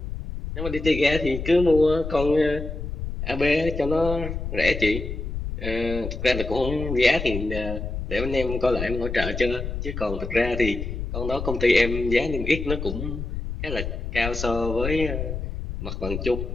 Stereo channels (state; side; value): noise; left; rumble, 5 dB below the sound